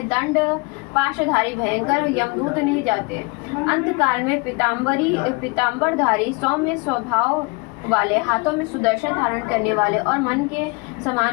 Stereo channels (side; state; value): right; quieter; 29.7 dB